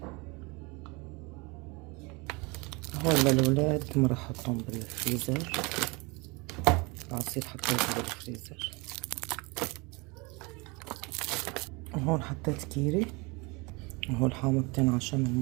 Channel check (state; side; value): quieter; left; 27.3 dB